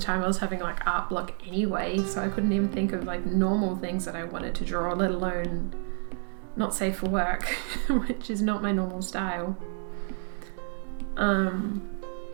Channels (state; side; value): silent; left; 58 dB below the other